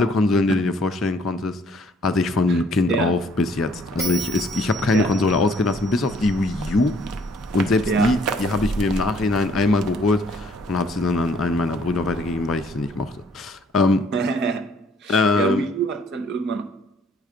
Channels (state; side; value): normal; both; correlation 0.62